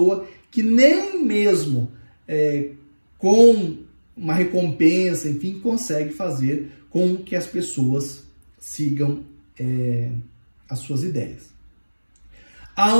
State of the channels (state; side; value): inverted; both; correlation -1.00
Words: que nem mesmo com uma recompensa, enfim, consegue fazer com que as pessoas sigam as suas ideias.